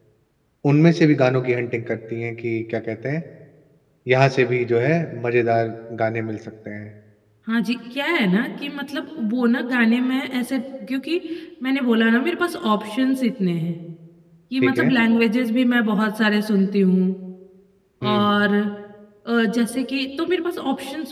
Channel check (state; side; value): identical; both; correlation 1.00